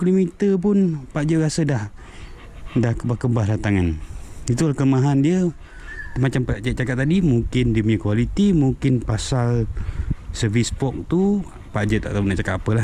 pun Pak Jeb rasa dah kebas-kebas dah tangan. Itulah kelemahan dia. Macam Pak Jeb cakap tadi, mungkin dia punya kualiti, mungkin pasal servis fork tu Pak Jeb tak tahu nak cakap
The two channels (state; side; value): identical; both; correlation 1.00